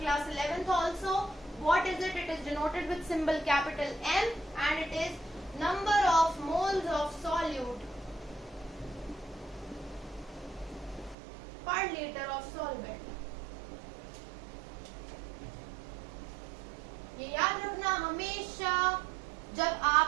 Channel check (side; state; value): left; drops out; at 11.2 s